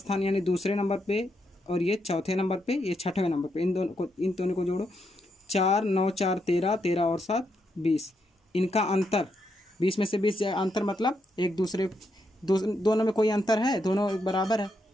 यानी दूसरे नंबर पे और ये चौथे नंबर पे, ये छठवें नंबर पे। इन दोनों को जोड़ो, 4 9 4 13, 13 और 7 20। इनका अंतर 20 में से 20 जाए, अंतर मतलब एक दूसरे दोनों में कोई अंतर है, दोनों एक बराबर है,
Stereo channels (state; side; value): normal; both; correlation 0.80